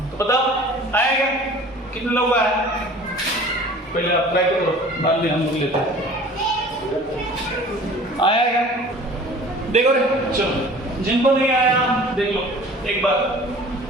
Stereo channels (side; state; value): both; normal; correlation 0.45